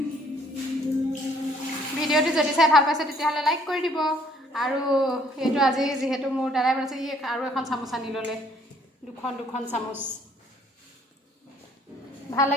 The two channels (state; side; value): normal; both; correlation 0.62